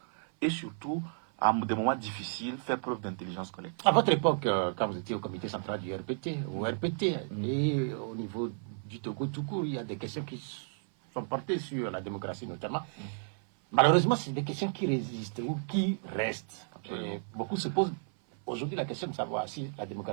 Et surtout, à des moments difficiles, faire preuve d'intelligence collective. À votre époque, quand vous étiez au comité central du RPT, au RPT, et au niveau du Togo tout court, il y a des questions qui sont portées sur la démocratie notamment. Malheureusement, c'est des questions qui résistent ou qui restent. Et beaucoup se posent aujourd'hui la question de savoir si la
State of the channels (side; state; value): left; silent; 56 dB below the other